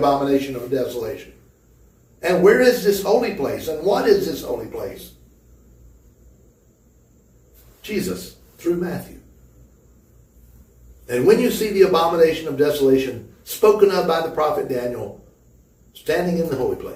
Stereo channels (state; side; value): identical; both; correlation 1.00